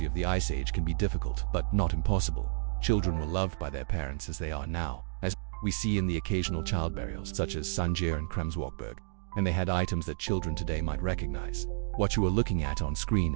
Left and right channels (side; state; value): left; silent; digital silence